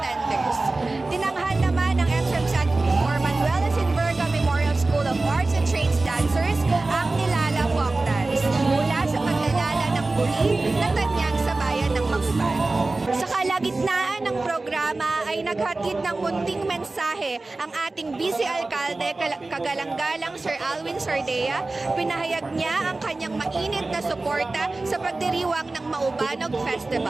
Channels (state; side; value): quieter; left; 3.2 dB